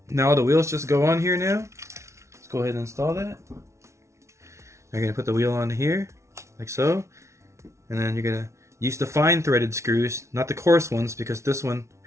Now the wheels just go on here now. Let's go ahead and install that. You're going to put the wheel on here, like so. And then you're going to use the fine threaded screws, not the coarse ones, because this one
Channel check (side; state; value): left; late; 0.14 ms